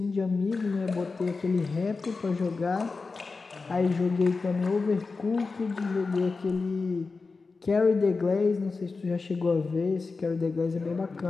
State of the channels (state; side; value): quieter; right; 4.2 dB